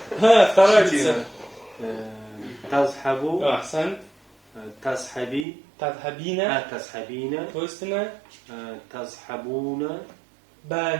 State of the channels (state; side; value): drops out; left; at 5.5 s